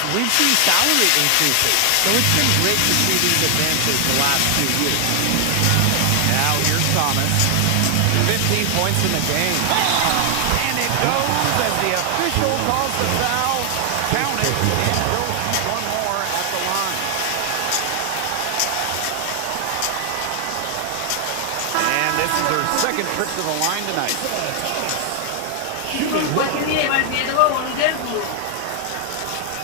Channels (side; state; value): both; different; correlation 0.00